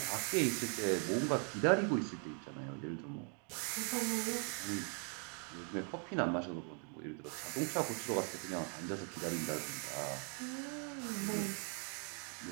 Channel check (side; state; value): left; quieter; 39.3 dB